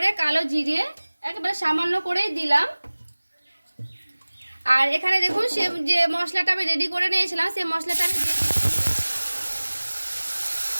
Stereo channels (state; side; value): inverted; both; correlation -1.00